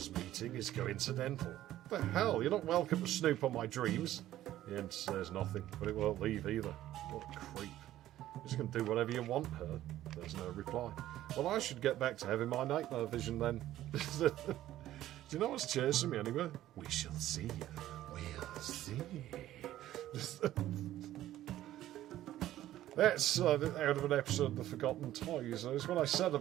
meeting is coincidental. What the hell? You're not welcome to snoop on my dreams. The end says nothing, but it won't leave either. What a creep. You're just going to do whatever you want, her. There's no reply. Well, I should get back to having my nightmare vision then. Do you know what's chasing me anyway? We shall see. We'll see. That's out of an episode of The Forgotten Toys. It's what I said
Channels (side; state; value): left; quieter; 13.6 dB